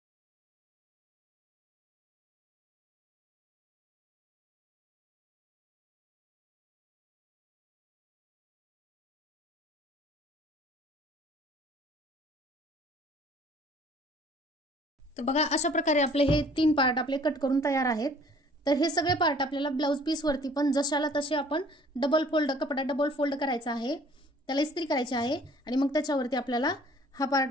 तर बघा अशा प्रकारे आपले हे 3 पार्ट आपले कट करून तयार आहेत। तर हे सगळे पार्ट आपल्याला ब्लाउज पीस वरती पण जशाला तसे आपण कपडा डबल फोल्ड करायचा आहे, त्याला इस्त्री करायची आहे आणि मग त्याच्यावरती आपल्याला हा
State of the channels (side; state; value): both; normal; correlation 0.54